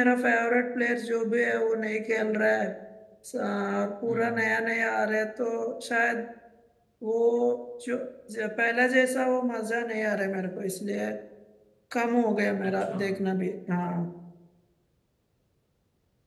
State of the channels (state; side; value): identical; both; correlation 1.00